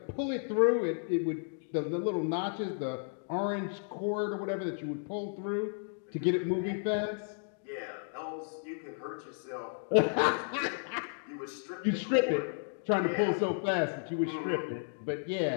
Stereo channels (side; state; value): right; silent; digital silence